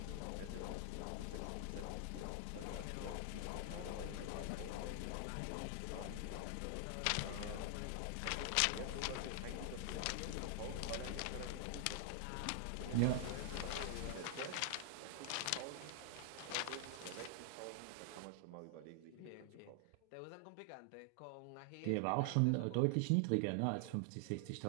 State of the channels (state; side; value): different; both; correlation 0.00